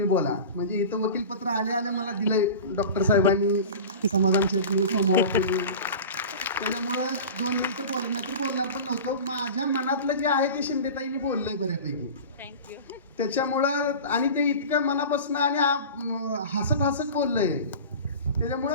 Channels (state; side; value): inverted; both; correlation -0.33